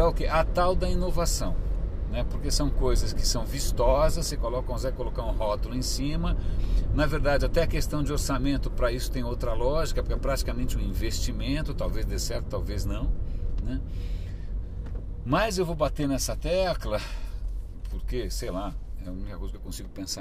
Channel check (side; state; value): both; identical; correlation 1.00